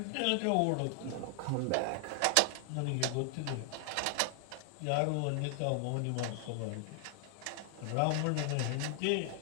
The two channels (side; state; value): both; different; correlation 0.00